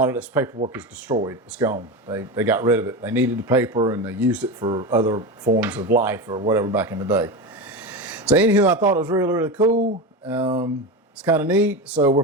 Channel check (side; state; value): both; normal; correlation 0.21